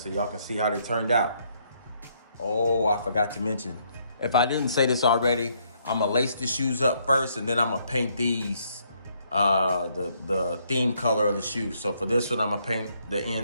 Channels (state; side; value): inverted; both; correlation -0.71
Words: y'all can see how they turned out. Oh, I forgot to mention, if I didn't say this already, I'm gonna lace the shoes up first, and then I'm gonna paint these the theme color of the shoe. So for this one, I'm gonna paint the